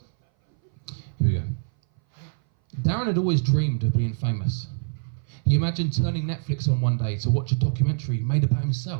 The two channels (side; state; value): left; silent; 59 dB below the other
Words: Here we go. Darren had always dreamed of being famous. He imagined turning Netflix on one day to watch a documentary made about